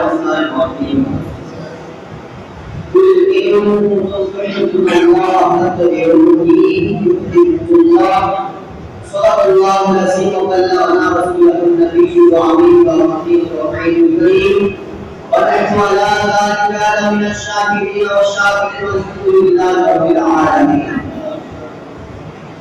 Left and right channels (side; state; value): both; identical; correlation 1.00